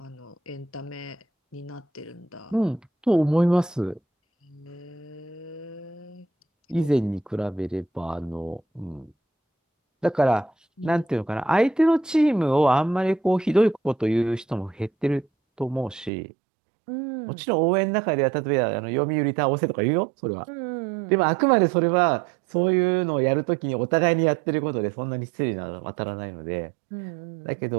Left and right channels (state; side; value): drops out; left; at 16.1 s